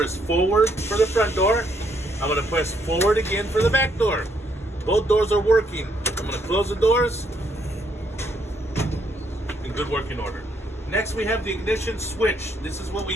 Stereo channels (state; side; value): normal; both; correlation 0.72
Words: forward for the front door. I'm going to press forward again for the back door. Both doors are working. I'm going to close the doors in good working order. Next, we have the ignition switch. This is what we